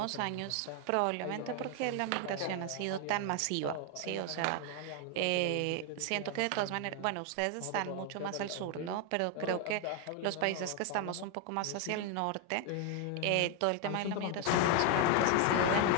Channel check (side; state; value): both; different; correlation 0.01